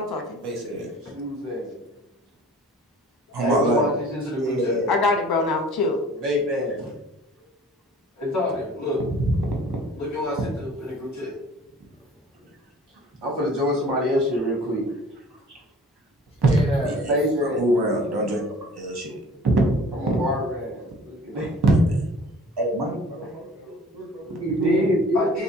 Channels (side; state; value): both; normal; correlation 0.48